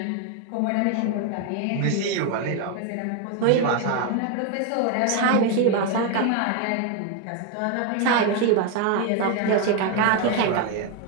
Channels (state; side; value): different; both; correlation 0.01